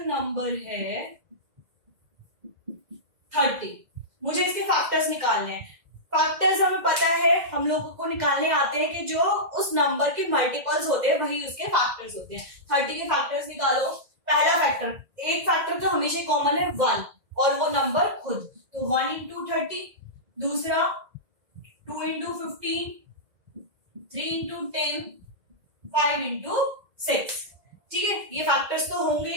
नंबर है 30, मुझे इसके फैक्टर्स निकालने हैं। फैक्टर्स हमें पता है, हम लोगों को निकालने आते हैं कि जो उस नंबर के मल्टीपल्स होते हैं वही उसके फैक्टर्स होते हैं। 30 के फैक्टर्स निकालो। पहला फैक्टर, एक फैक्टर तो हमेशा कॉमन है 1 और वो नंबर खुद, तो 1 into 30। दूसरा 2 into 15, 3 into 10, 5 into 6। ठीक है, ये फैक्टर्स तो होंगे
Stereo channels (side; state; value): left; late; 2.0 ms